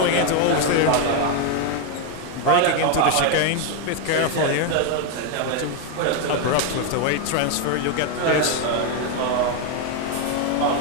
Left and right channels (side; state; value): both; different; correlation 0.01